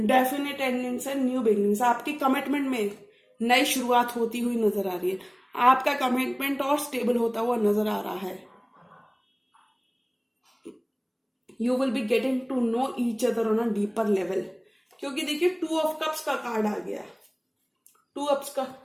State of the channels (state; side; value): identical; both; correlation 1.00